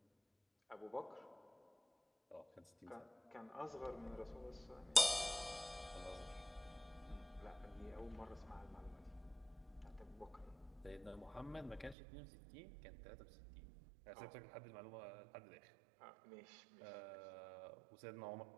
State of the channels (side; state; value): left; drops out; at 12.0 s